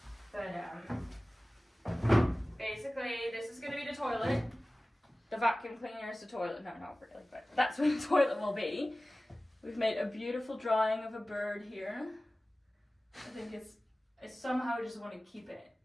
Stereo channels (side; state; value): both; normal; correlation 0.97